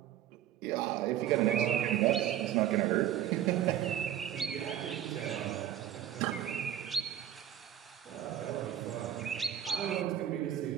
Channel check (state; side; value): quieter; left; 10.9 dB